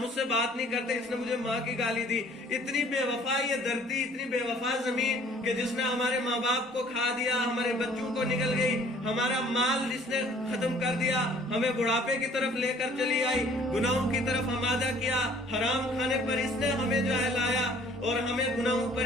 اس سے بات نہیں کرتے، اس نے مجھے ماں کی گالی دی۔ اتنی بے وفا یہ دھرتی، اتنی بے وفا زمین کہ جس نے ہمارے ماں باپ کو کھا دیا، ہمارے بچوں کو نگل گئی، ہمارا مال اس نے ختم کر دیا، ہمیں بڑھاپے کی طرف لے کر چلی آئی، گناہوں کی طرف آمادہ کیا، حرام کھانے پر اس نے ہمیں جو ہے لایا، اور ہمیں گناہوں پر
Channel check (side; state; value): both; normal; correlation 0.55